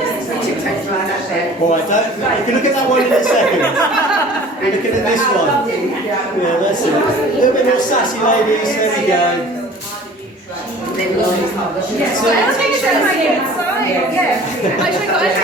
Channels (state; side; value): normal; both; correlation 0.46